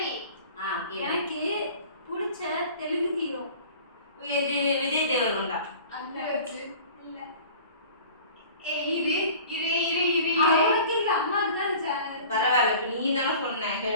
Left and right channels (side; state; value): both; inverted; correlation -0.44